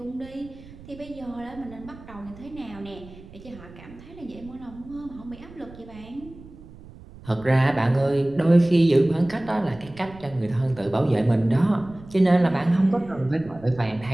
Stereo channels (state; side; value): noise; right; rumble, 19 dB below the sound